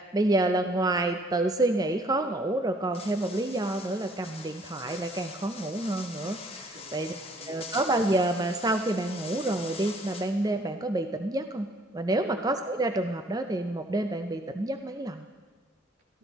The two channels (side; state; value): both; normal; correlation 0.61